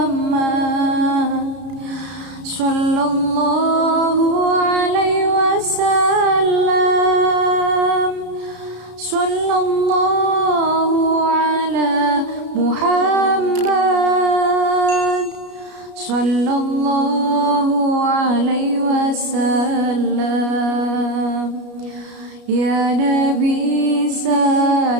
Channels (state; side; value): late; left; 33 ms